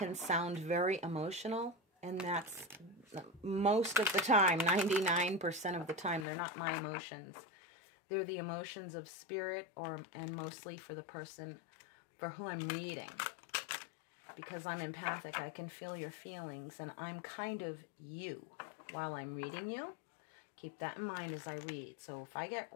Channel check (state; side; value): drops out; right; at 6.2 s